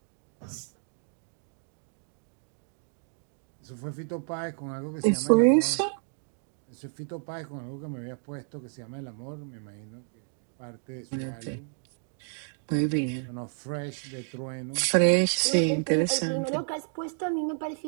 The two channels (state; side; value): silent; left; 57 dB below the other